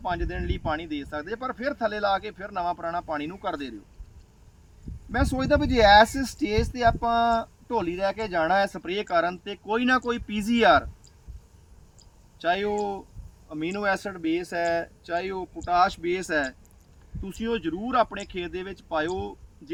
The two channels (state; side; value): identical; both; correlation 1.00